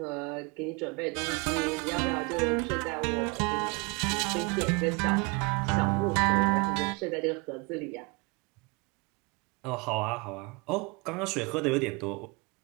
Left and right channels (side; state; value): left; quieter; 29.2 dB